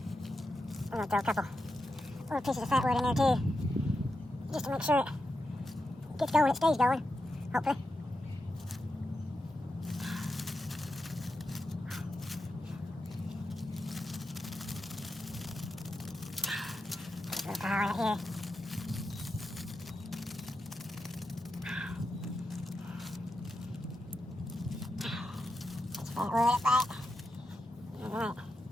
I'm going to throw a couple little pieces of fat wood in there too. Just to make sure it gets going, it stays going, hopefully. Just a little pile right here. Just fat wood up right. Alright.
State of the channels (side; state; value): both; normal; correlation 0.87